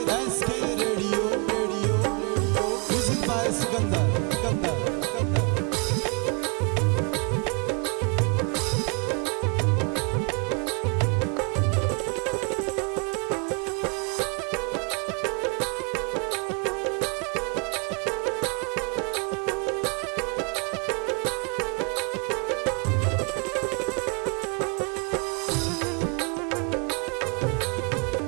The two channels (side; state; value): left; quieter; 34.6 dB